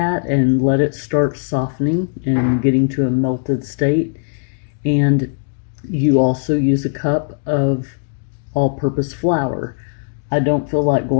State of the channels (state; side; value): silent; right; digital silence